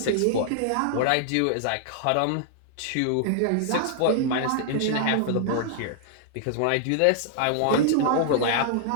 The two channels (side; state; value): both; different; correlation -0.01